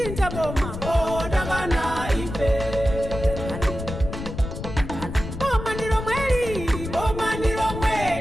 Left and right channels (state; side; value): noise; left; rumble, 8 dB below the sound